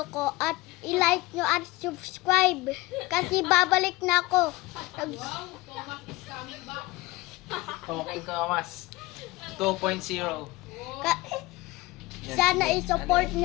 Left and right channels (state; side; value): quieter; right; 20.2 dB